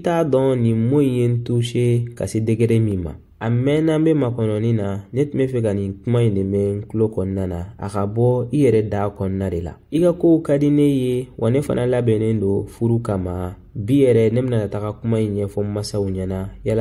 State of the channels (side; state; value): both; identical; correlation 1.00